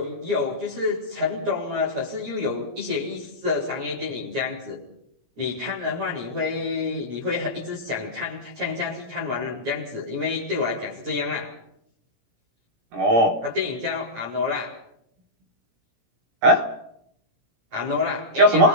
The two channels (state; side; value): late; left; 17 ms